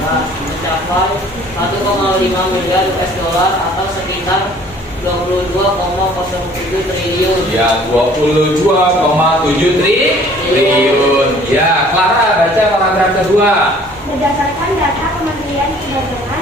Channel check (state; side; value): normal; both; correlation 0.54